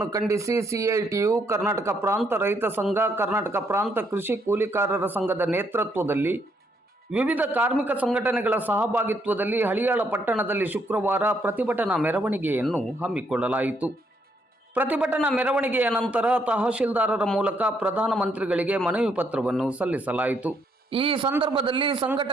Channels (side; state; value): both; normal; correlation 0.72